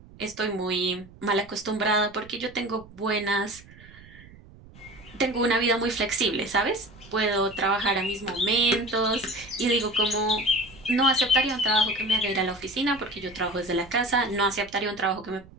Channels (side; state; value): right; noise; rumble, 22 dB below the sound